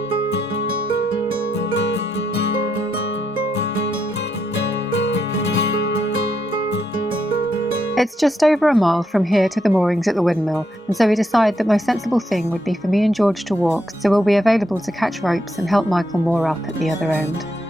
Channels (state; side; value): normal; both; correlation 0.79